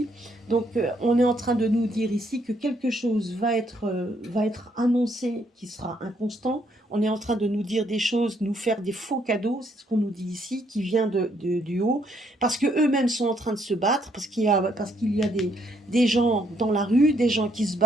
Donc on est en train de nous dire ici que quelque chose va être annoncé qui sera inconstant. On est en train de nous dire des choses, nous faire des faux cadeaux, c'est ce qu'on nous dit ici, qui vient du haut, parce qu'eux-mêmes sont en train de se battre, parce qu'il y a des gens dans la rue, des gens qui se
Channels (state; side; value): normal; both; correlation 0.71